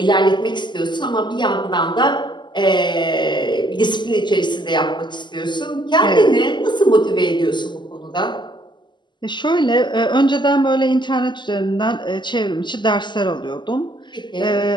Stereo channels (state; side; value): late; right; 0.22 ms